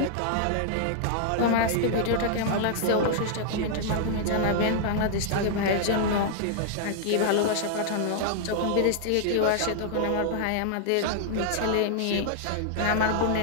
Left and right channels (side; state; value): both; different; correlation -0.01